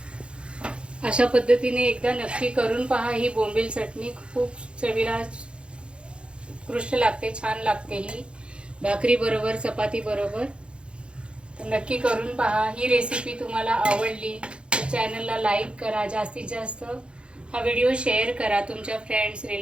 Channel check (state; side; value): late; left; 0.057 ms